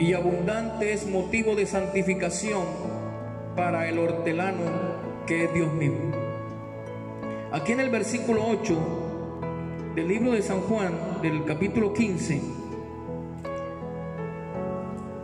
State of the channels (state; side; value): identical; both; correlation 1.00